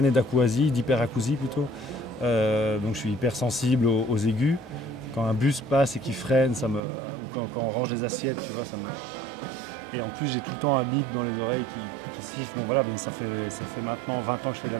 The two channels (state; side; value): drops out; left; at 6.8 s